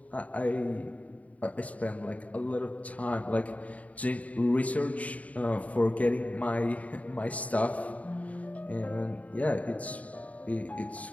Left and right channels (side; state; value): right; late; 0.069 ms